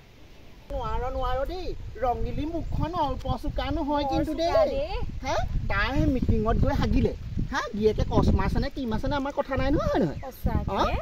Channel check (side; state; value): both; identical; correlation 1.00